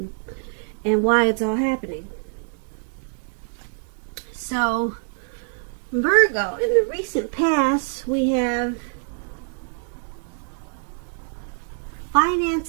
and why it's all happening. So, Virgo, in the recent past, we have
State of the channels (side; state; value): left; silent; 57 dB below the other